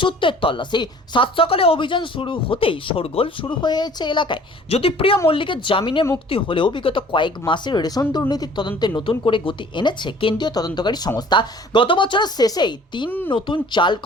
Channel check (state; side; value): normal; both; correlation 0.50